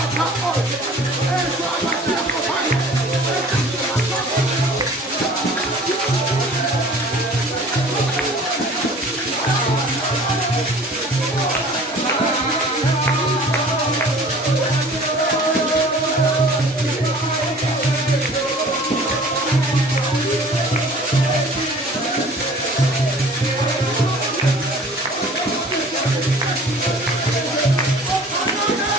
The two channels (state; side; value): normal; both; correlation 0.47